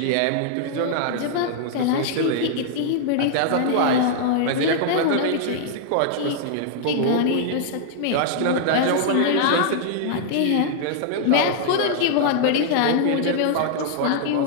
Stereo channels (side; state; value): both; different; correlation -0.01